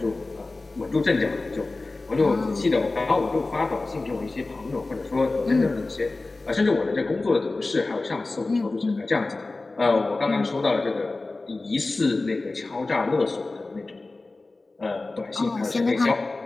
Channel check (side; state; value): right; quieter; 3.3 dB